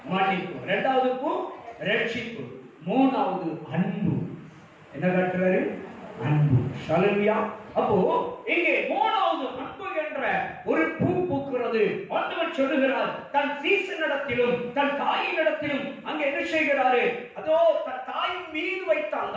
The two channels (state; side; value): identical; both; correlation 1.00